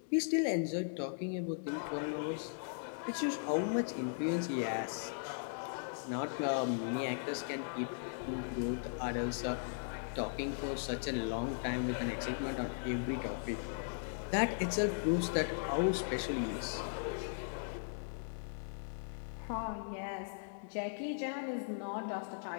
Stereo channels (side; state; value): right; silent; digital silence